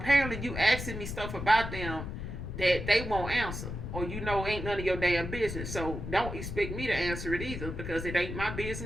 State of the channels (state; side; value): noise; left; rumble, 6 dB below the sound